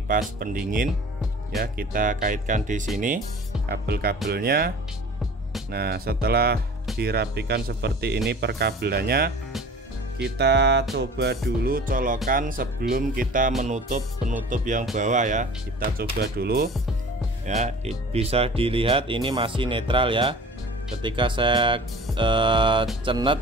pendingin ya. Kita kaitkan di sini kabel-kabelnya. Nah, setelah dirapikan seperti ini perkabelannya, kita coba dulu colokan sebelum kita menutup penutup yang bawah ya. Kita coba dulu ya, bisa dilihat ini masih netral ya. Ketika saya cenet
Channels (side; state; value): both; normal; correlation 0.43